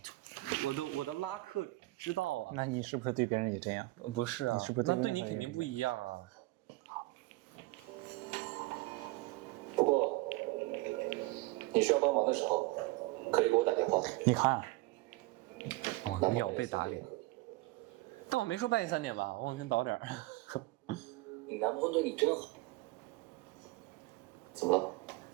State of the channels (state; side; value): quieter; left; 21.1 dB